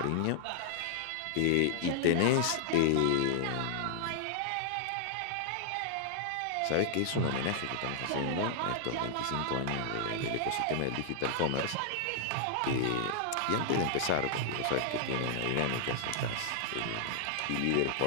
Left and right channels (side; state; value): both; different; correlation -0.01